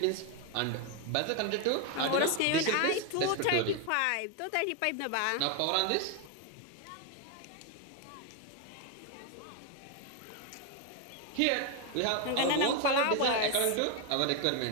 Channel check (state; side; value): different; both; correlation 0.01